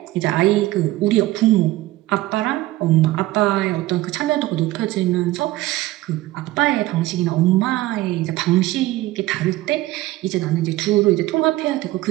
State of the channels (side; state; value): left; quieter; 17.1 dB